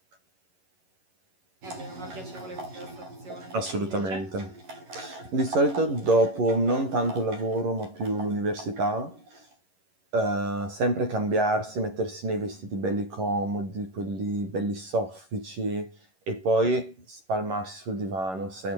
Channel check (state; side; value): late; left; 11 ms